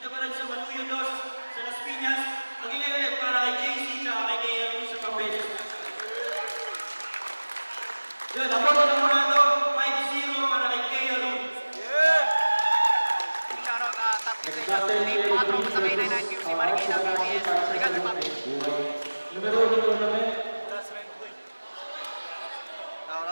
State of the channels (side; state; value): both; inverted; correlation -1.00